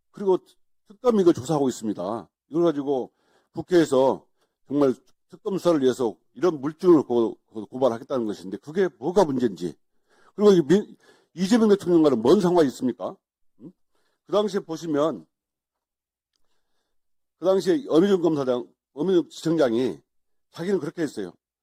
그리고 특검이 이걸 조사하고 있습니다. 이걸 가지고 국회에서 정말 특검 수사를 위해서 이런 물증을 고발하겠다는 것인데 그게 뭐가 문제인지. 그리고 이재명 대통령과는 뭔 상관이 있습니까? 그 당시에 보시면 그 당시에 어미준 지청장이 자기는 그렇게 했어요.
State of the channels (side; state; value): both; identical; correlation 1.00